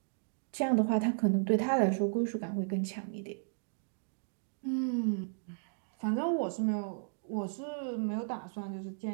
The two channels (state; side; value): silent; left; digital silence